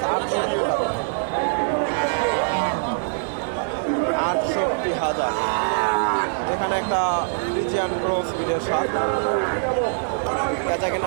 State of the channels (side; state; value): left; silent; 63 dB below the other